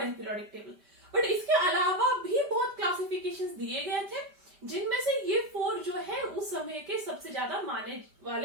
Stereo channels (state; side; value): late; left; 5.1 ms